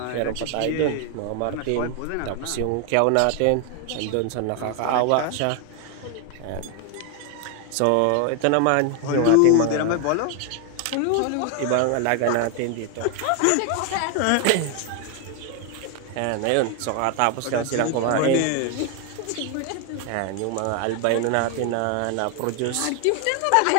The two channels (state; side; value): different; both; correlation 0.01